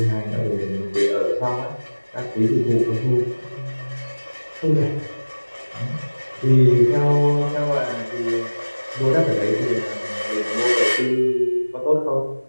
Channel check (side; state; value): both; inverted; correlation -1.00